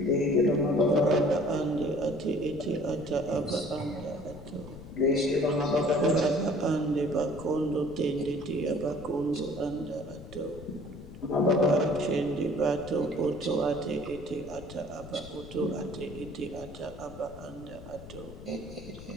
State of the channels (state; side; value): noise; left; rumble, 15 dB below the sound